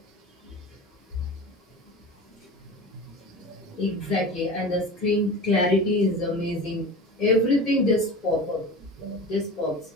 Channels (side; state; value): both; normal; correlation 0.33